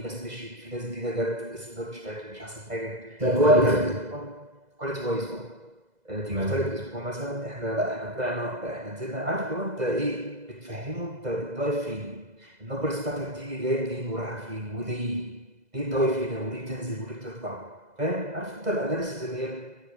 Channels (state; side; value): late; left; 2.0 ms